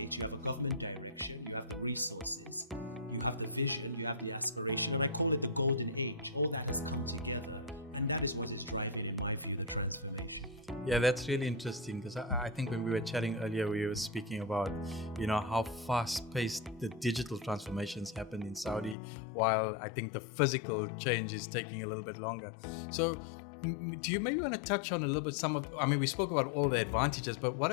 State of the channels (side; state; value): right; drops out; at 18.9 s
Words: you have a government direction, you have the resources, you have the vision, you have the aspiration, and I call it the golden age. All that has come together, and that is what is driving, in my view, the transformation. Yeah, that's really interesting, because I think when we were chatting earlier, we were speaking about, how fast-paced the digital transformations happen in Saudi, while I think the physical change is taking a little bit longer. So do you maybe want to touch on a little bit we spoke about all the advantages, but